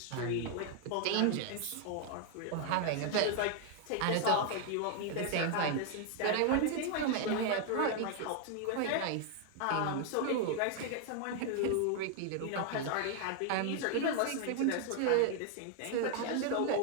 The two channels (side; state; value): both; different; correlation 0.00